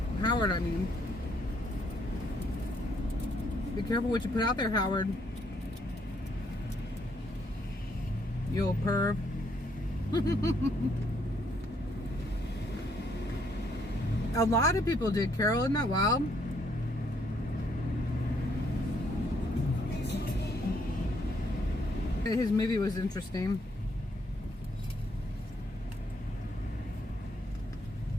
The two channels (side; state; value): both; normal; correlation 0.71